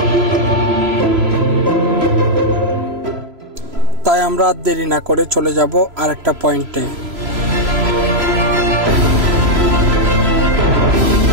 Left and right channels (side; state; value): left; late; 3.0 ms